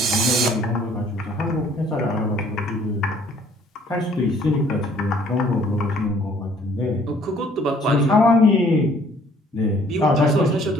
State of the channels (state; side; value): normal; both; correlation 0.59